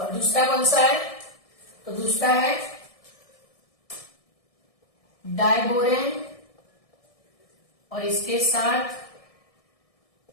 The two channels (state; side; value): late; right; 1.7 ms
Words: दूसरा कौन सा है? तो दूसरा है डाइबोरेन और इसके साथ